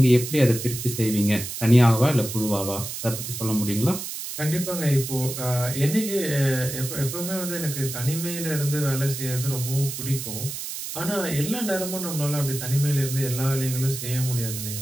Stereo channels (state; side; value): noise; right; hiss, 7 dB below the sound